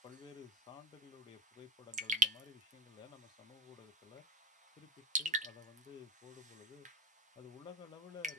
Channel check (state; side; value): normal; both; correlation 0.31